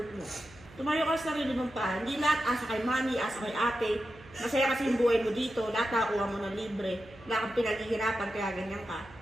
mo. Tumayo ka sa sarili mong paa. Hindi lahat asa kay mami, asa kay ate. Masaya kasi yung buhay mo dito. Lahat nakakuha mo ng libre. Wala kang pinaghihirapan kaya ganyan ka.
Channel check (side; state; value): right; noise; hum, 22 dB below the sound